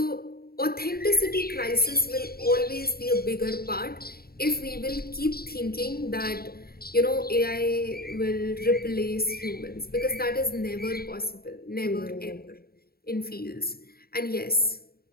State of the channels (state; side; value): late; right; 0.44 ms